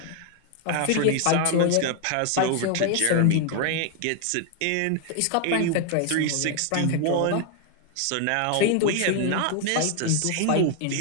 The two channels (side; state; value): both; different; correlation 0.00